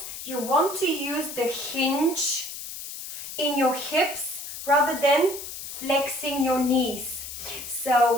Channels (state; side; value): noise; left; hiss, 9 dB below the sound